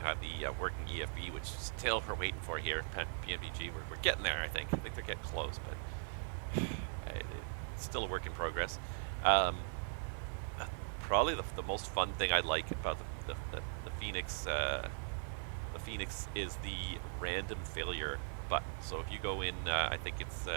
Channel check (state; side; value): silent; left; 51 dB below the other